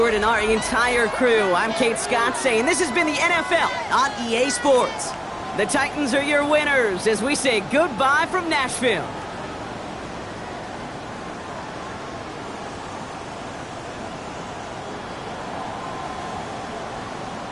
and our entire crew, I'm Kate Scott saying this has been the NFL on EA Sports. The Titans are your winners as we say goodbye from Nashville.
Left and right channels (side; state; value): both; identical; correlation 1.00